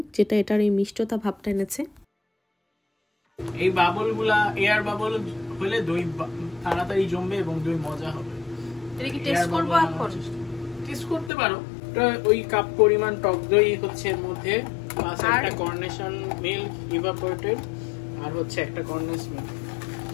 যেটা এটার এই মিষ্টতা ভাবটা এনেছে। এই বাবলগুলা এয়ার বাবল হলে দই তাড়াতাড়ি জমবে এবং দই মজা হবে। এটা কি টেস্ট করব এখন? টেস্ট করতে পারো। ওই কাপ পরিমাণ টক দই হচ্ছে এর মধ্যে, প্লাস একটা কর্নেশন মিল্ক ইভাপোরেটেড, আর হচ্ছে একটা কর্নেস মিল্ক।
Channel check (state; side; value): drops out; right; at 11.3 s